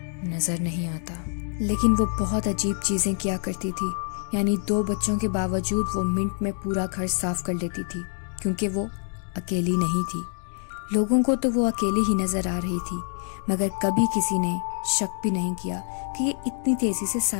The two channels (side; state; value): right; silent; 57 dB below the other